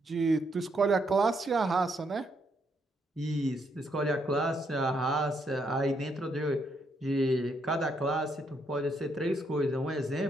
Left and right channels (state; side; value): normal; both; correlation 0.75